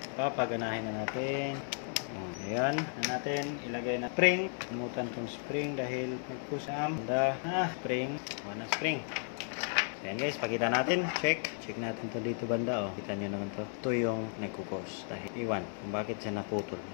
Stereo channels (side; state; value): right; silent; 55 dB below the other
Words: papaganahin na natin. Ayan. Na natin. Ilagay na spring. Pinutan tong spring dahil magkusam. Banda. Spring. Wala spring. So, yan guys, pakita natin. Check natin to dito banda. Kita nyo naman to. Ito yung nagkukos. Dahil iwan kung bakit siya naputol.